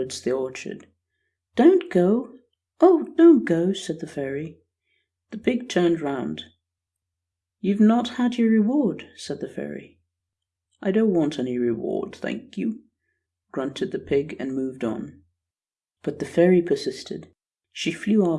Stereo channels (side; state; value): both; identical; correlation 1.00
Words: the orchard. "Don't go! Oh, don't go!" said the fairy. The pig turned round. "You've not had your reward," said the fairy. "I don't want any reward, thank you," grunted the pig and moved on. But the fairy persisted. She flew